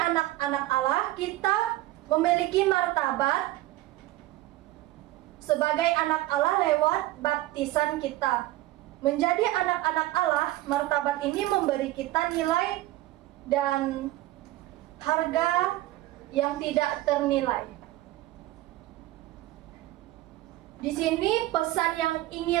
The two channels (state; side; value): quieter; left; 16.7 dB